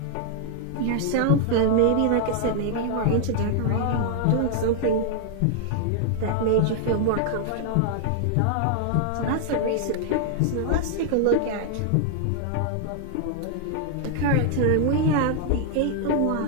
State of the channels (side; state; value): both; different; correlation 0.00